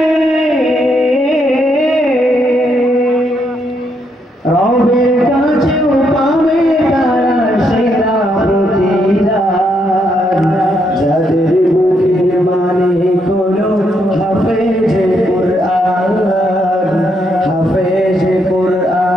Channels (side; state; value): both; normal; correlation 0.76